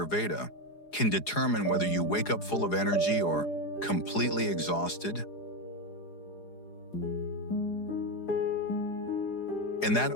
can determine whether you wake up full of energy or completely exhausted? And that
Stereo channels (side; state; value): right; late; 4.8 ms